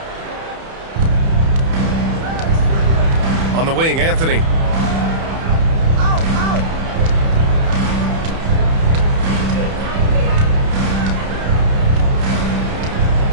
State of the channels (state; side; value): late; left; 31 ms